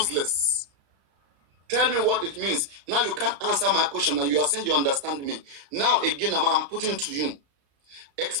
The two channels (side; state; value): left; late; 34 ms